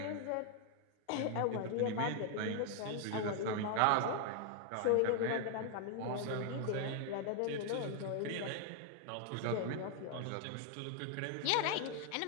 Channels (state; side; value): different; both; correlation 0.00